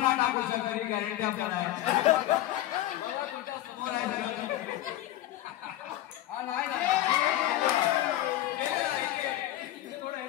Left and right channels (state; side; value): quieter; right; 14.2 dB